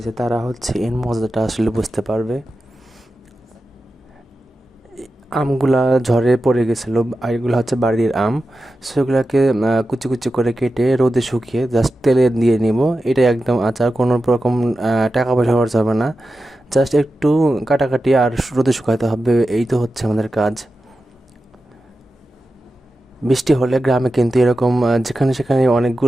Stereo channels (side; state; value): both; normal; correlation 0.92